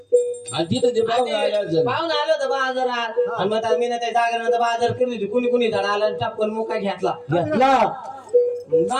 तिथं ते पाहून पाहून आलं होतं बाजारात आणि मग मीनाताई जागरणाचा बाजार केली होती कुणी झाड आला टपकन मुका घेतला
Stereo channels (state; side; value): identical; both; correlation 1.00